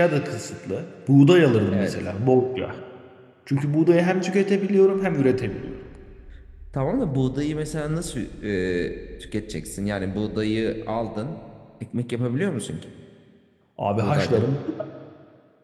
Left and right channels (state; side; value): identical; both; correlation 1.00